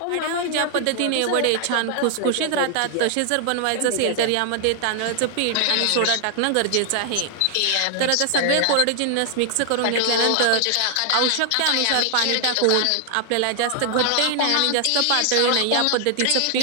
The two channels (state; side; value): different; both; correlation 0.00